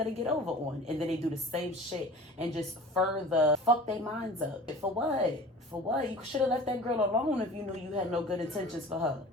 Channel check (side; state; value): both; normal; correlation 0.41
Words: to get over on. And then they do the same shit and just further fuck their minds up. For what? For what? You should have left that girl alone if you knew you had no good intentions for her.